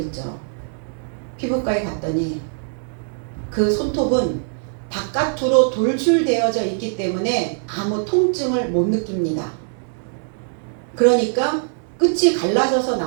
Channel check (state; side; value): silent; left; digital silence